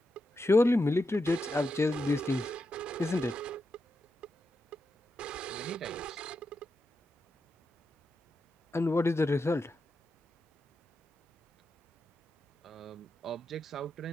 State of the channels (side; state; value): both; normal; correlation 0.87